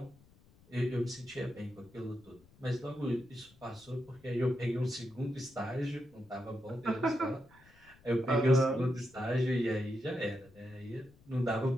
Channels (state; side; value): noise; left; rumble, 27 dB below the sound